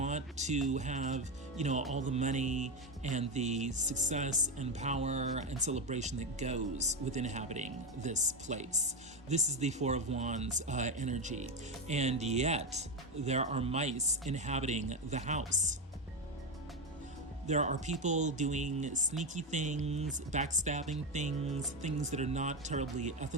to have, all the money and the success and power and celebration that goes with inhabiting this place. This is the Four of Wands energy. And yet, there are mice inhabiting the house. There are people doing sneaky things, backstabbing things, things that are not terribly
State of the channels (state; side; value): normal; both; correlation 0.12